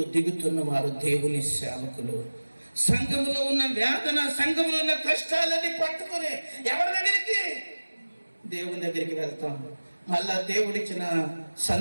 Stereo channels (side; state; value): both; inverted; correlation -1.00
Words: దిగుతున్న వారు దేవుని సేవకులు. సంఘంలో ఉన్న వేదన, సంఘంలో ఉన్న కష్టాలన్నీ పట్టుకుని ఎవరి దగ్గరికి? దేవుని దగ్గరికి వెళ్తాం. మళ్ళా దేవుడిచ్చిన